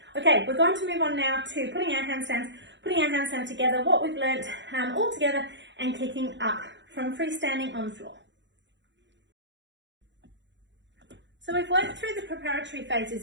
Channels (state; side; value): late; left; 0.53 ms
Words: Okay, we're going to move on now to putting our handstand together, what we've learnt all together, and kicking up from freestanding on the floor. So we've worked through the preparatory